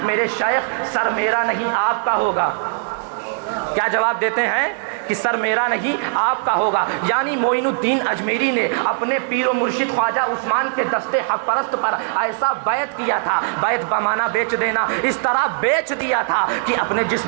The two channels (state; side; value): silent; left; digital silence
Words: میرے شیخ سر میرا نہیں آپ کا ہوگا۔ کیا جواب دیتے ہیں کہ سر میرا نہیں آپ کا ہوگا، یعنی معین الدین اجمیری نے اپنے پیر و مرشد خواجہ عثمان کے دستے حق پرست پر ایسا بیعت کیا تھا، بیعت بمانا بیچ دینا، اس طرح بیچ دیا تھا کہ اپنے